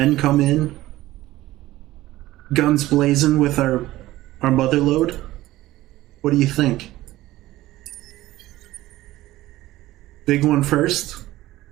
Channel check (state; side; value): quieter; left; 16.4 dB